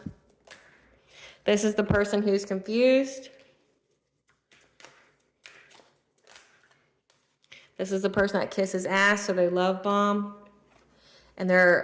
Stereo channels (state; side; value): identical; both; correlation 1.00